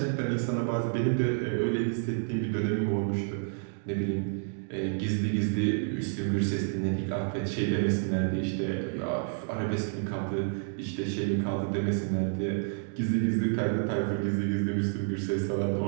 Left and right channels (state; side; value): silent; left; digital silence